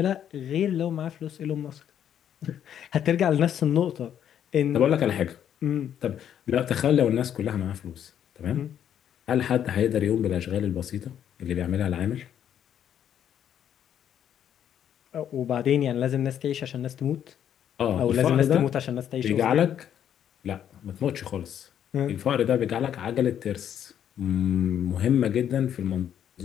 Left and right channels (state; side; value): quieter; right; 9.7 dB